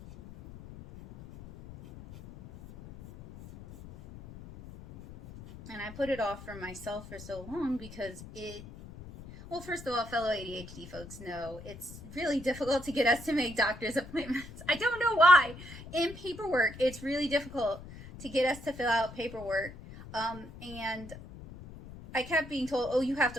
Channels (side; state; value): left; noise; rumble, 15 dB below the sound